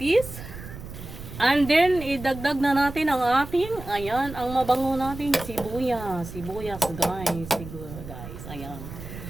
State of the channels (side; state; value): right; noise; rumble, 12 dB below the sound